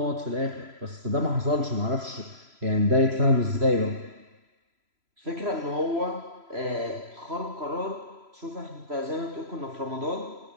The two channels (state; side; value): late; left; 3.0 ms